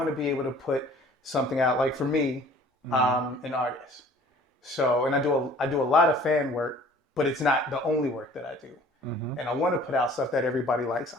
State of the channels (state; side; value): normal; both; correlation 0.51